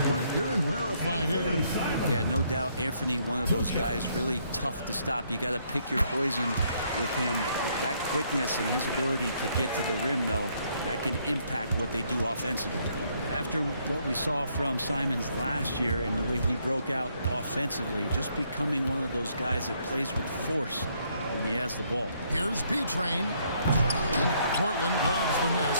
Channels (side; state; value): both; inverted; correlation -0.70